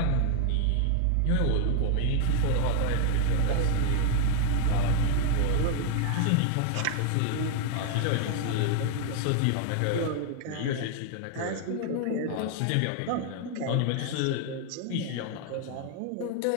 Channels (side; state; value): both; different; correlation 0.00